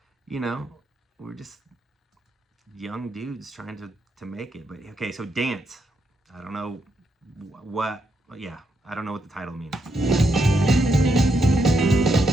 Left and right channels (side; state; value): both; normal; correlation 0.80